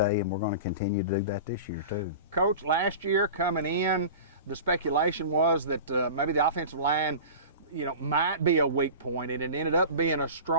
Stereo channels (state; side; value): inverted; both; correlation -0.34